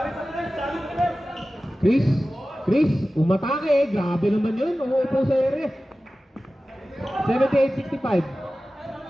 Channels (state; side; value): normal; both; correlation 0.95